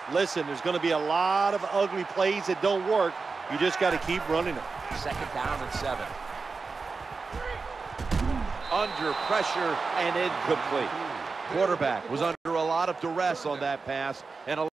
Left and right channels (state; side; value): quieter; left; 4.4 dB